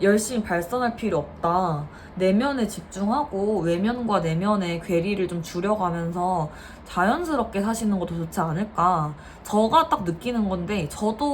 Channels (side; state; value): both; identical; correlation 1.00